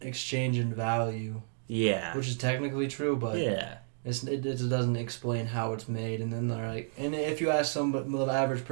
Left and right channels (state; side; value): silent; left; digital silence